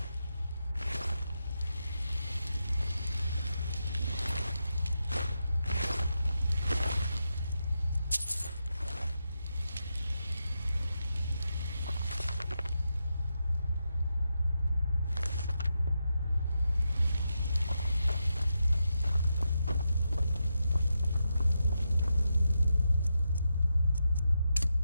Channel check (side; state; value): both; inverted; correlation -0.86